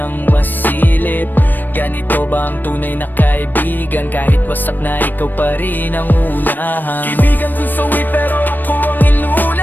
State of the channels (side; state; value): right; late; 0.091 ms